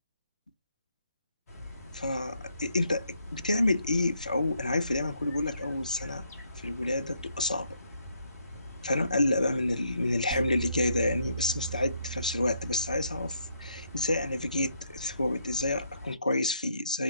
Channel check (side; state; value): both; inverted; correlation -0.73